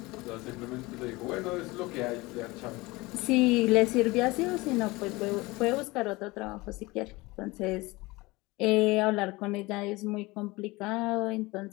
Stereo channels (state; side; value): quieter; right; 22.2 dB